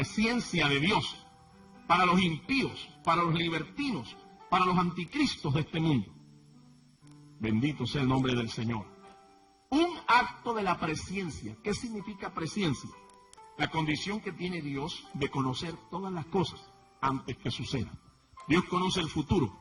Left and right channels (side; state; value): both; identical; correlation 1.00